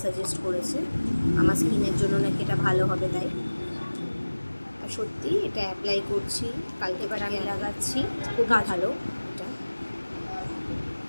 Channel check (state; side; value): inverted; both; correlation -1.00